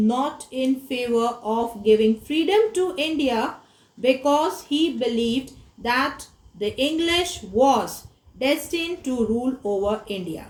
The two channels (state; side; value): identical; both; correlation 1.00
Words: in favor of giving freedom to India because he believed that the English was destined to rule over India.